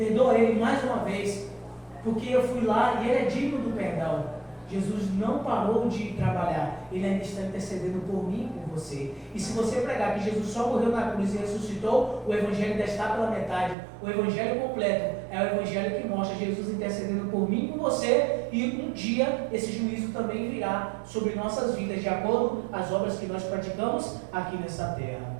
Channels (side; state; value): left; drops out; at 13.8 s